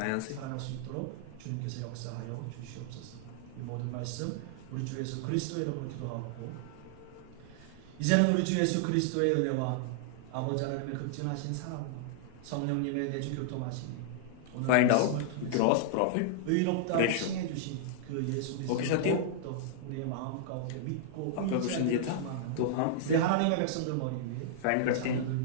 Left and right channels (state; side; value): different; both; correlation -0.01